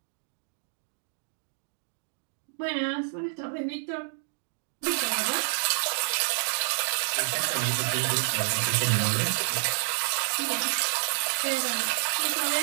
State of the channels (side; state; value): left; silent; digital silence